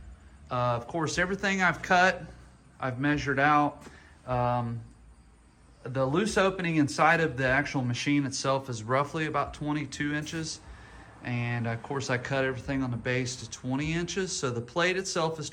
Of course, everything I've cut, I've measured out. The loose opening inside of the actual machine itself is roughly about 22 inches. And of course I cut everything on the base to 20 inches. So the plate itself is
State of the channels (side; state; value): both; identical; correlation 1.00